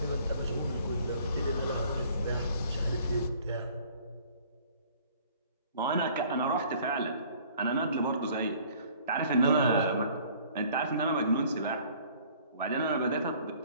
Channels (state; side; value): inverted; both; correlation -0.54